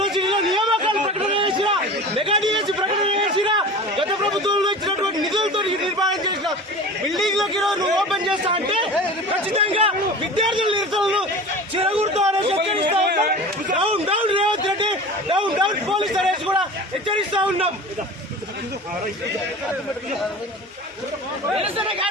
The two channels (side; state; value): both; normal; correlation 0.35